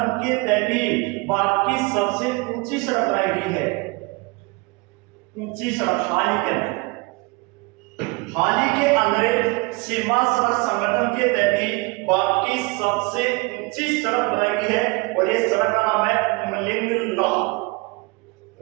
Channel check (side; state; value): left; quieter; 27.0 dB